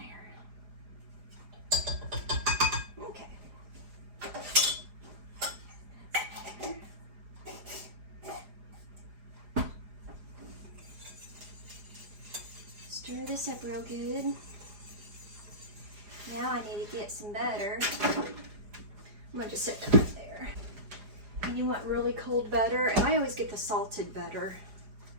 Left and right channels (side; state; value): left; late; 4.9 ms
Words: there. Okay. Stir this up real good. Now I need to get some butter. I'm gonna just set that right there. And you want really cold butter, and I always get the salted butter.